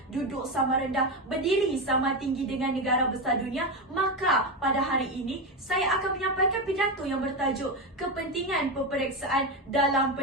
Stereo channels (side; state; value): both; normal; correlation 0.14